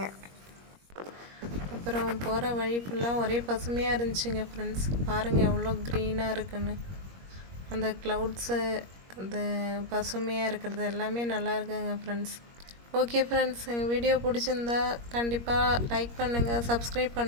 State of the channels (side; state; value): left; late; 21 ms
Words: அப்புறம் போகிற வழி ஃபுல்லாக ஒரே பசுமையாக இருந்துச்சுங்க ஃப்ரெண்ட்ஸ். பாருங்கள் எவ்வளோ க்ரீனாக இருக்குன்னு. அந்த க்ளவுட்ஸு, அந்த பசுமையாக இருக்கிறது எல்லாமே நல்லா இருக்குங்க ஃப்ரெண்ட்ஸ். ஓகே ஃப்ரெண்ட்ஸ், எங்கள் வீடியோ பிடிச்சிருந்தா கண்டிப்பாக லைக் பண்ணுங்கள், சப்ஸ்கிரைப்